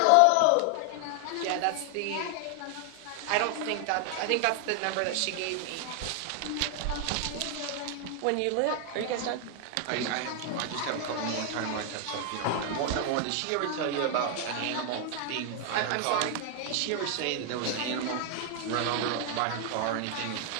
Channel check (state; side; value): different; both; correlation 0.00